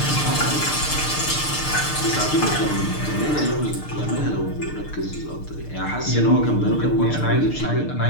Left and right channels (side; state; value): right; late; 6.6 ms